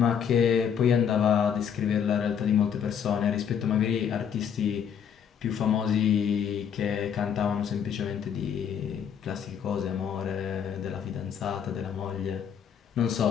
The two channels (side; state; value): right; quieter; 7.9 dB